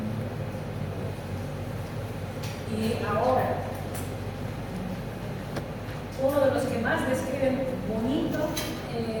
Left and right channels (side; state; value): both; identical; correlation 1.00